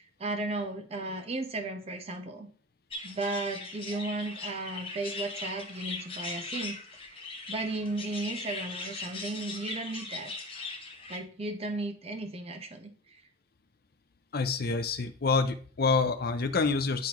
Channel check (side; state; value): both; normal; correlation 0.31